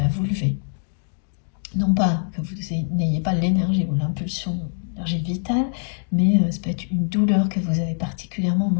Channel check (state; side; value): silent; right; 63 dB below the other